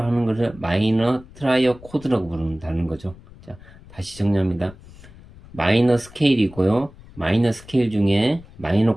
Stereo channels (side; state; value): left; noise; rumble, 21 dB below the sound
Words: 하는 것을 마이너 트라이어 코드라고 부른다는 거죠. 자, 다시 정리합니다. 마이너 스케일이고요. 마이너 스케일 중에